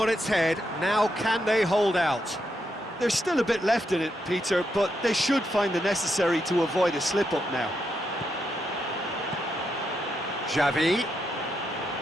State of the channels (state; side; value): normal; both; correlation 0.82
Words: its head, now can they hold out? There's still a bit left in it, Peter, but they should find the necessary to avoid a slip-up now. Xavi.